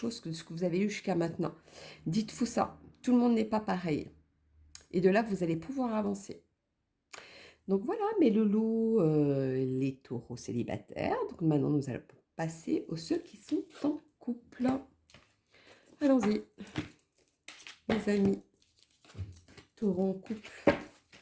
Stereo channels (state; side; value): identical; both; correlation 1.00